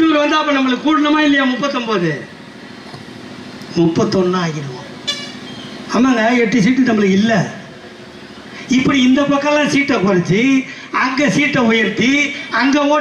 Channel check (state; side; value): identical; both; correlation 1.00